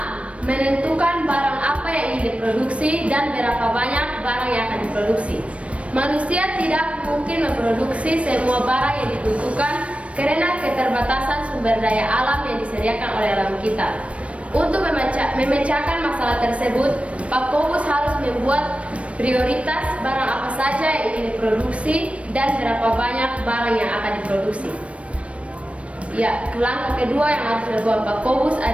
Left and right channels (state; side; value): late; left; 0.062 ms